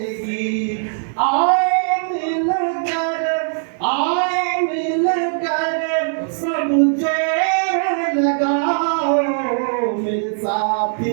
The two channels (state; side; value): silent; left; digital silence